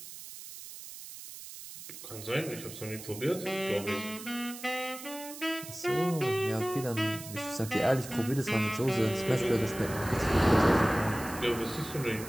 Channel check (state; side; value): noise; right; hiss, 13 dB below the sound